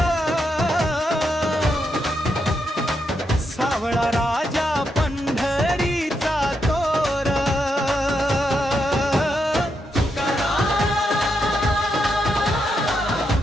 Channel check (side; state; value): both; normal; correlation 0.82